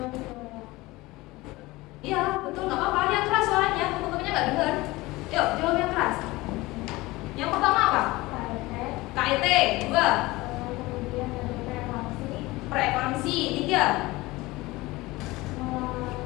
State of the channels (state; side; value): quieter; right; 20.6 dB